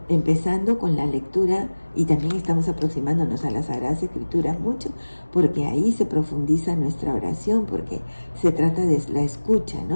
empezando con la lectura Y también estamos aproximándonos a las Sagradas Escrituras mucho, porque ahí se profundiza nuestra oración, porque se trata de la escucha,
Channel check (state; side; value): inverted; both; correlation -1.00